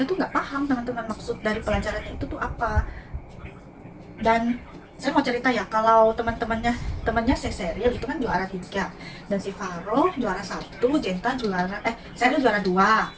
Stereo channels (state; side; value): identical; both; correlation 1.00